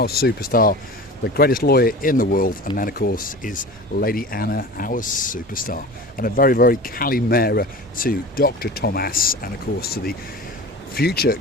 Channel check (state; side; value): normal; both; correlation 0.35